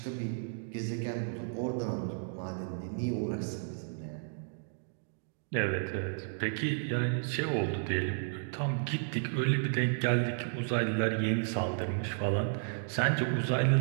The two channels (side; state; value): left; silent; digital silence